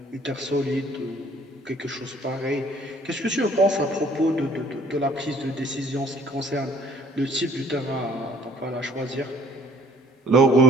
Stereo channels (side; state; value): both; normal; correlation 0.56